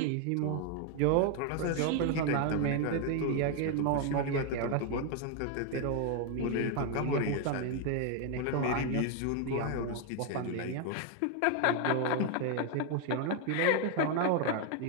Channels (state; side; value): different; both; correlation 0.00